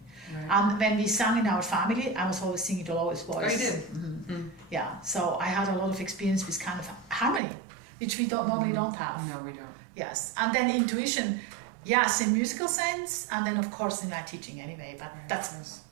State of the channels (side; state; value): left; drops out; at 7.4 s